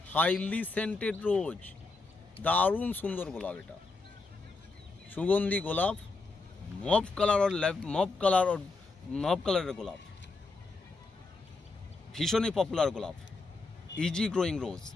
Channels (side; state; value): right; quieter; 3.7 dB